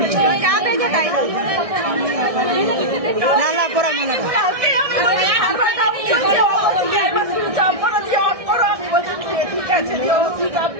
না না পড়া মনে ঠিক আছে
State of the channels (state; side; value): late; left; 1.6 ms